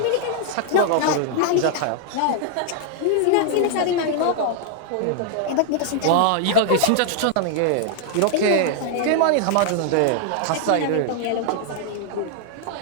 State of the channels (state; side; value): different; both; correlation 0.00